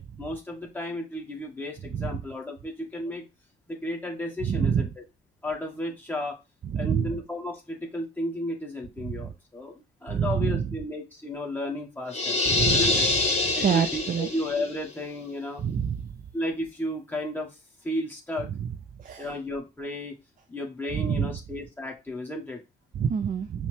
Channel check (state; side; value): normal; both; correlation 0.47